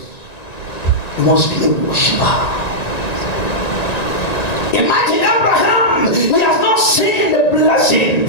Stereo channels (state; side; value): late; right; 1.9 ms